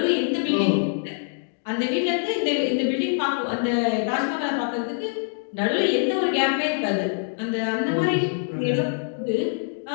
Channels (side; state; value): right; silent; digital silence